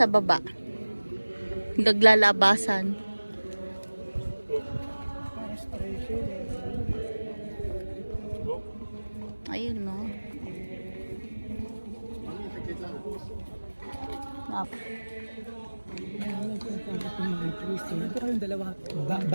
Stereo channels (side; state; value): both; inverted; correlation -1.00